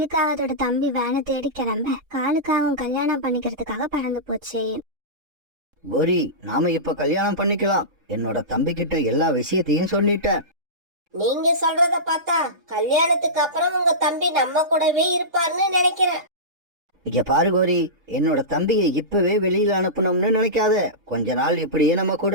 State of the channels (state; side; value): late; left; 3.7 ms